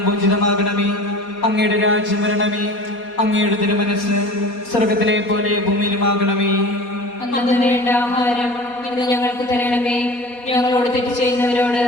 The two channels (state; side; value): late; right; 4.2 ms